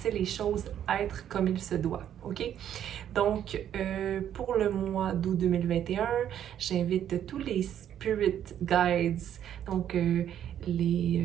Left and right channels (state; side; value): quieter; left; 10.2 dB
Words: les choses être comme il se doit, ok? Donc, pour le mois d'août 2021, j'invite tous les spirit guides, donc